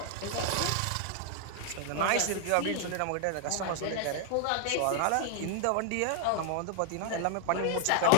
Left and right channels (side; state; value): both; different; correlation 0.00